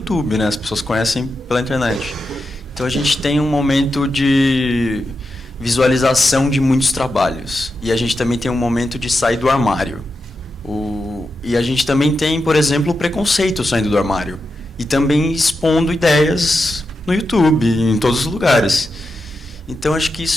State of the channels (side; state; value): both; normal; correlation 0.88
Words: né? As pessoas conhecem pela internet. Então a gente tem um momento de visualização de muitos trabalhos. E a gente também tem um momento de sair do armário. E a gente também tem, por exemplo, o preconceito saindo do armário. E também expondo ideias no YouTube, em todos os lugares. Então, acho que